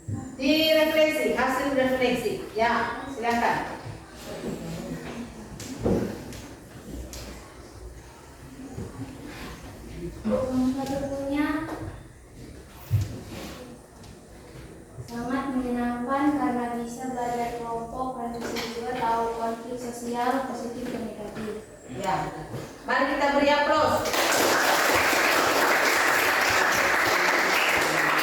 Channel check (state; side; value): identical; both; correlation 1.00